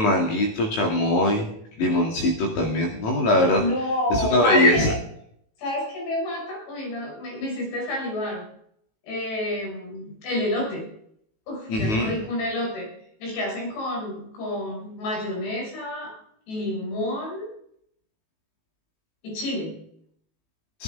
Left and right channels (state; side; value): late; right; 18 ms